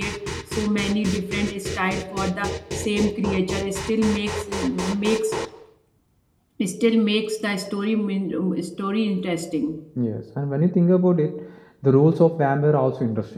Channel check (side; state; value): both; identical; correlation 1.00